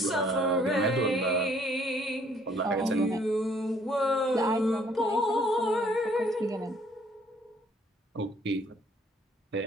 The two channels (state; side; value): normal; both; correlation 0.62